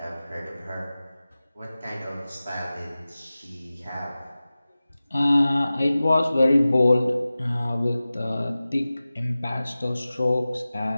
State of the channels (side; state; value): both; inverted; correlation -0.97